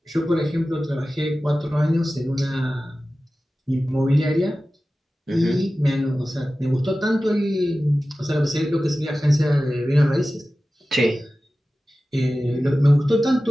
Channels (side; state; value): both; normal; correlation 0.95